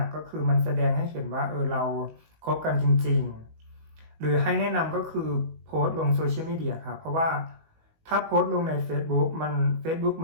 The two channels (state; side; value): late; left; 19 ms